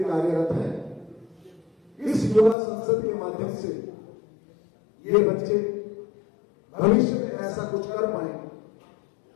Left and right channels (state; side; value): drops out; right; at 2.6 s